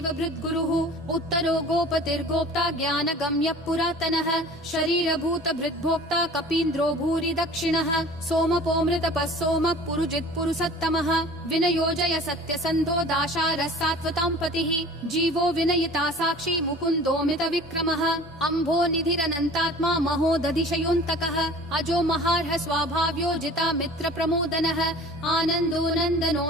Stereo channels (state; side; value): normal; both; correlation 0.44